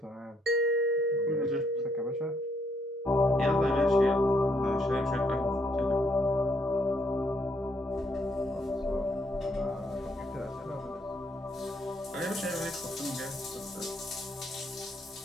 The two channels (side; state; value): both; normal; correlation 0.72